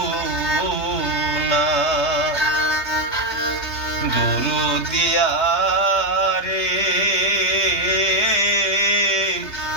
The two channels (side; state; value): right; late; 3.2 ms